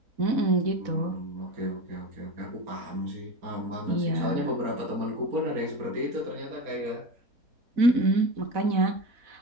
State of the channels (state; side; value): late; left; 4.0 ms